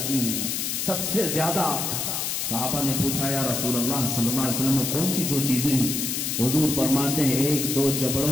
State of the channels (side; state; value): left; noise; hiss, 1 dB below the sound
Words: ہیں سب سے زیادہ۔ صحابہ نے پوچھا یا رسول اللہ صلی اللہ علیہ وسلم کون سی دو چیزیں ہیں؟ حضور فرماتے ہیں ایک دو